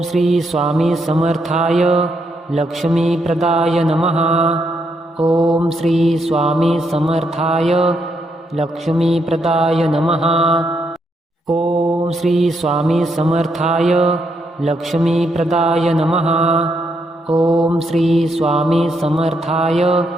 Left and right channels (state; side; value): normal; both; correlation 0.77